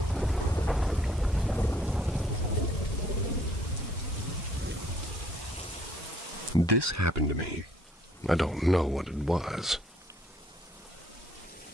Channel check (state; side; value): normal; both; correlation 0.63